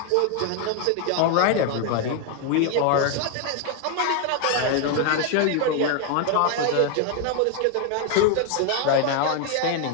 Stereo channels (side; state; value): both; different; correlation 0.00